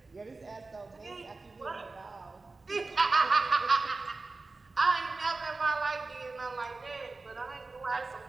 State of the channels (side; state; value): left; quieter; 3.6 dB